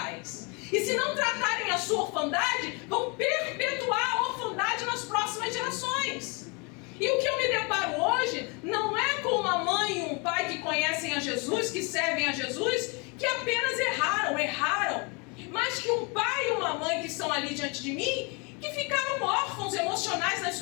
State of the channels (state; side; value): quieter; right; 31.2 dB